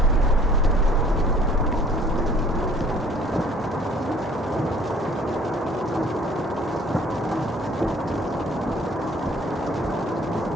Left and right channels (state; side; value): normal; both; correlation 0.55